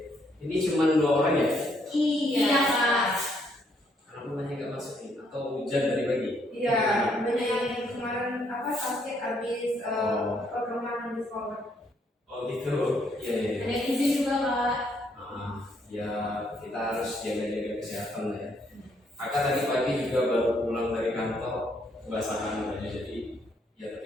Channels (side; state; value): both; normal; correlation 0.71